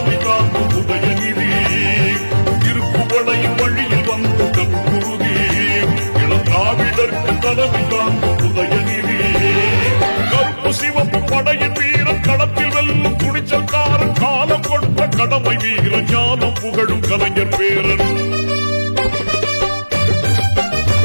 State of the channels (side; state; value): both; inverted; correlation -1.00